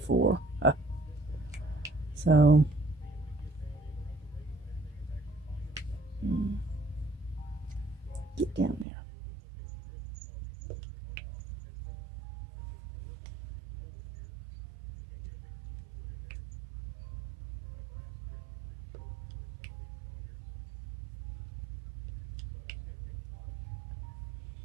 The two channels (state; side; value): drops out; left; at 8.8 s